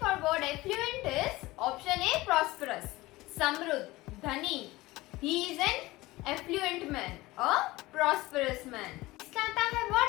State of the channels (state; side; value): quieter; right; 19.5 dB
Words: for word affluent is option A prosperous, समृद्ध, धनी। He is an affluent man, a prosperous man. इसका आता है